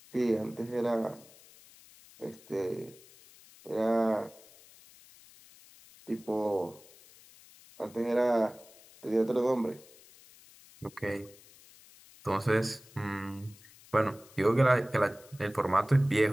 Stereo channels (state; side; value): noise; left; hiss, 24 dB below the sound